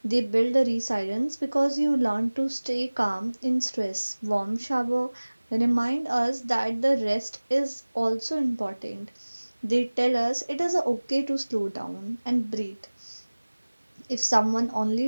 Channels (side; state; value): both; inverted; correlation -1.00